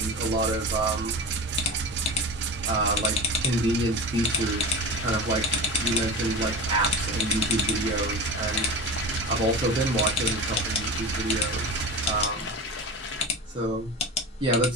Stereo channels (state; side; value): normal; both; correlation 0.29